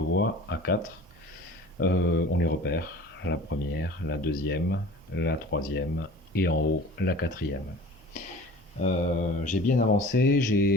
voies, A4. On les repère, la première, la deuxième, la troisième et en haut la quatrième. J'ai bien avancé,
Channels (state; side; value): normal; both; correlation 0.42